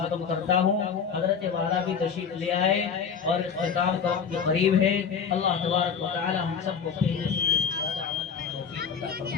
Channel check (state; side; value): quieter; right; 6.6 dB